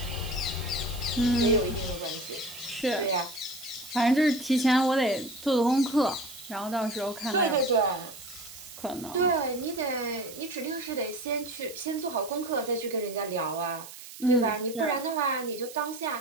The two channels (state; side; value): noise; right; hiss, 15 dB below the sound